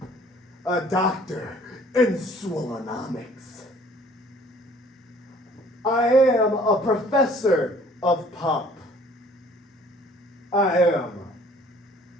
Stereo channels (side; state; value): both; normal; correlation 0.55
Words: A doctor in swillonomics. I am a professor of pump. I am